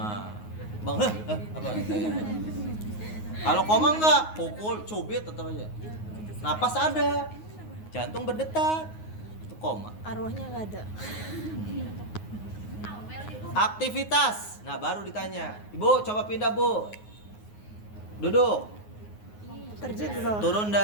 bangun. Apa? Kalau koma enggak, pukul, cubit tetap aja. Napas ada. Jantung berdetak. Itu koma. Arwahnya nggak ada. Aktivitas. Nah, baru ditanya. Ibu, coba pindah, Bu. Duduk. Terjun di bawah. Turun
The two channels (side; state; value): right; late; 9.5 ms